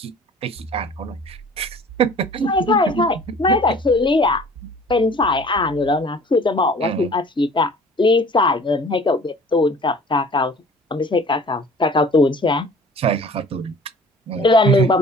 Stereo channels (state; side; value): normal; both; correlation 0.48